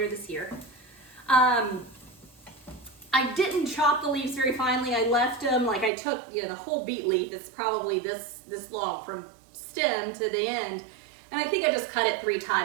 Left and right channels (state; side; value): drops out; left; at 5.9 s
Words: this year, I didn't chop the leaves very finely. I left them, like I took, you know, the whole beet leaf, it's probably this long from stem to the end, and I think I just cut it 3